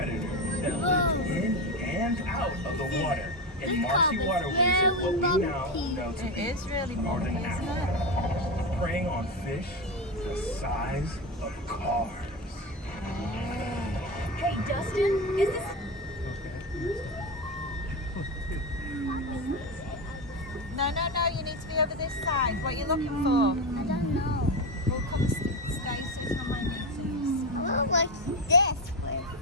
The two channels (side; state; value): both; normal; correlation 0.17